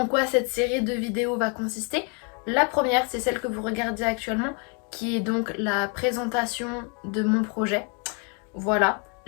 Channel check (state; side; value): quieter; right; 36.5 dB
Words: quoi cette série de vidéos va consister. La première, c'est celle que vous regardez actuellement, qui est donc la présentation de mon projet. Voilà.